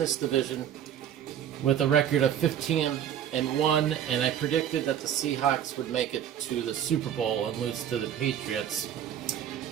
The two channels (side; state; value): left; quieter; 9.9 dB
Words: division with a record of 15-1, and I predicted that the Seahawks would make it to the Super Bowl and lose to the Patriots.